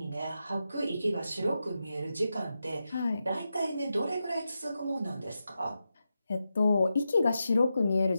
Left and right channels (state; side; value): inverted; both; correlation -0.89